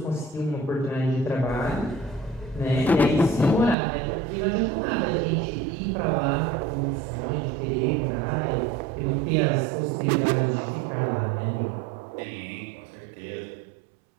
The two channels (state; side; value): drops out; left; at 3.8 s